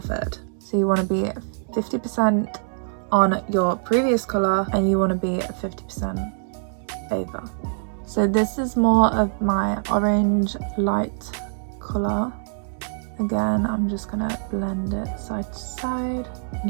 So you want to be 50% on your previous colour and you want to be 50% over. So this is more of my orange light colour. Again, I'm just going to blend it side to side and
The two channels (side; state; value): left; silent; digital silence